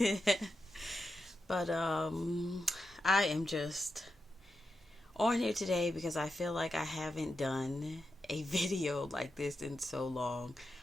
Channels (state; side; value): normal; both; correlation 0.88